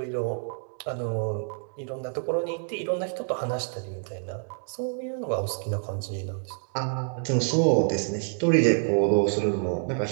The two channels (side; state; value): left; silent; 60 dB below the other